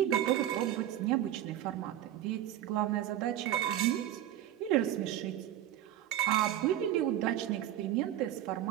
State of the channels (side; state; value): left; quieter; 12.2 dB